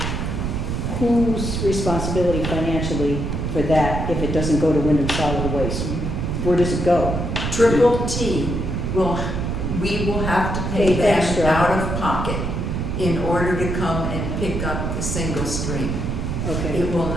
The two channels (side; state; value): right; noise; rumble, 2 dB below the sound